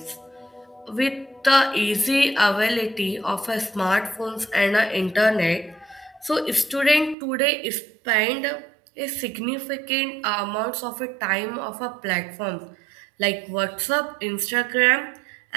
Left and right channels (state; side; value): drops out; left; at 7.2 s